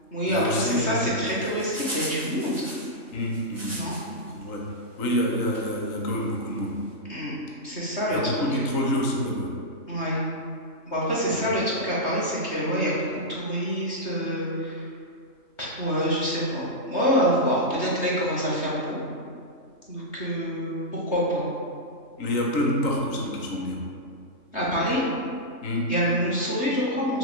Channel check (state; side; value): late; right; 3.2 ms